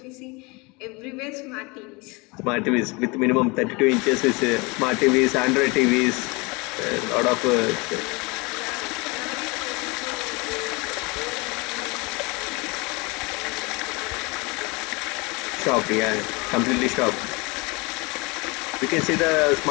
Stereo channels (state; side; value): quieter; right; 26.8 dB